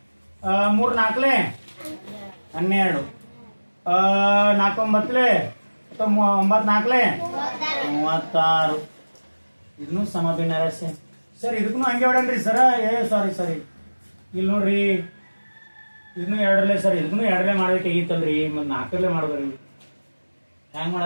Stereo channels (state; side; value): inverted; both; correlation -1.00